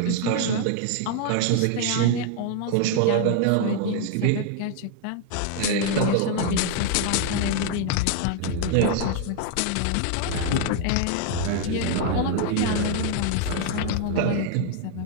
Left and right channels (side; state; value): both; different; correlation 0.00